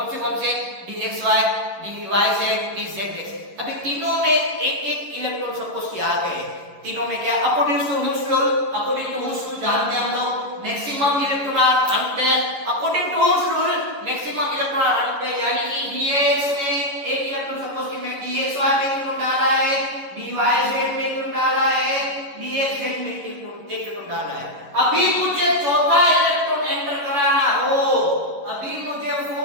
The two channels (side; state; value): left; late; 11 ms